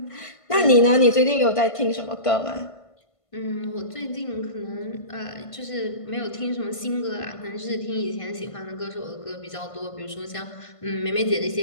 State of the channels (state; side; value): late; right; 1.5 ms